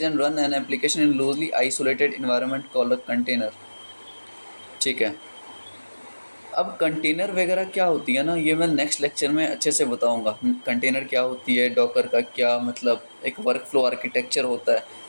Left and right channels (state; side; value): inverted; both; correlation -1.00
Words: and run an application in loosely isolated environment called a container. ठीक है, अब कंटेनर वगैरह क्या होती है ना, ये मैं नेक्स्ट लेक्चर में अच्छे से बताऊंगा। कंटेनर क्या होती है, डॉकर का क्या मतलब, एक वर्क फ्लो आर्किटेक्चर होता है।